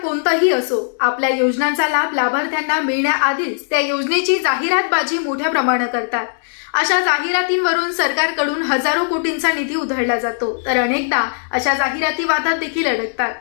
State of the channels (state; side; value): silent; right; digital silence